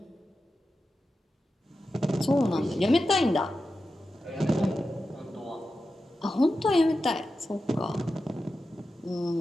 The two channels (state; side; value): normal; both; correlation 0.91